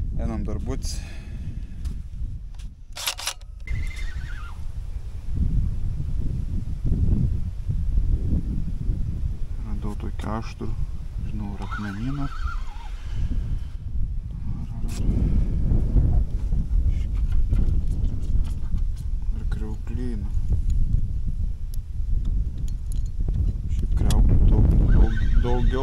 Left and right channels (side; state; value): both; identical; correlation 1.00